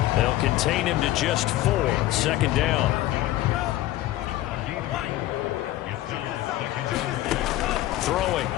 They'll contain him to just 4. 2nd down. Throwing.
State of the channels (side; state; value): right; quieter; 15.5 dB